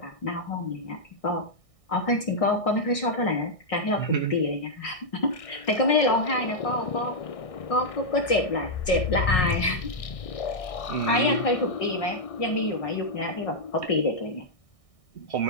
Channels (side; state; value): right; late; 1.6 ms